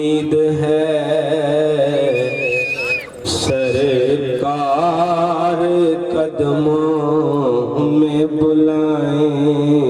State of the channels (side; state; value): both; identical; correlation 1.00